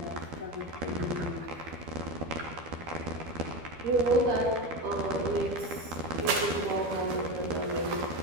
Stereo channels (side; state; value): left; late; 12 ms